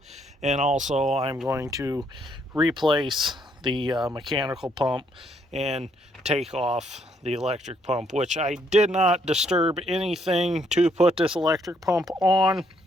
And also I'm going to replace the mechanical pump and take off the electric pump, which I did not disturb anything to put this electric pump on.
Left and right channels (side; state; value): both; normal; correlation 0.71